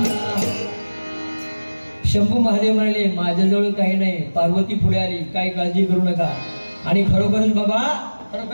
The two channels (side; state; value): both; inverted; correlation -1.00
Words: शंभू महादेव म्हणाले माझ्याजवळ काही नाही, पार्वती पुढे आली, काही काळजी करू नका. आणि खरोखरच बाबा,